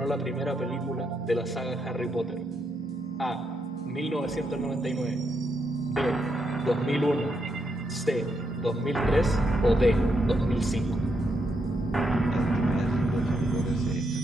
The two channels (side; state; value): both; normal; correlation 0.80